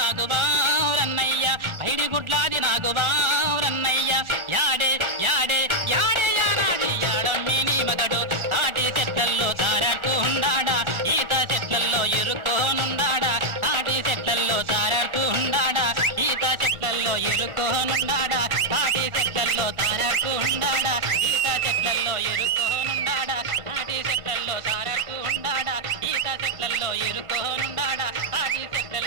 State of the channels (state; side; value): late; left; 1.3 ms